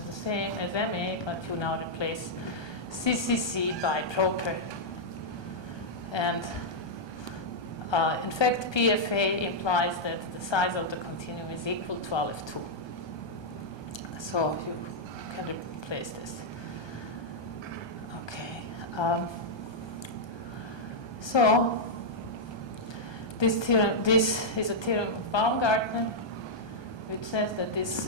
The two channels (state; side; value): late; right; 1.2 ms